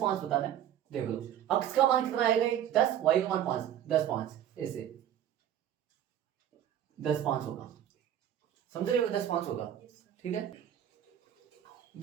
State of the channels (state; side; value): quieter; left; 10.7 dB